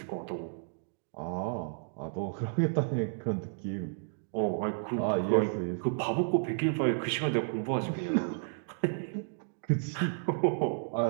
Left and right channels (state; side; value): silent; left; digital silence